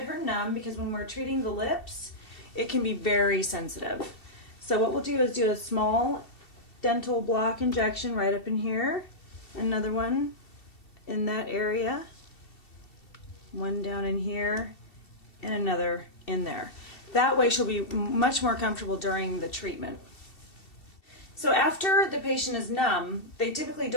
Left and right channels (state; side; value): late; right; 2.7 ms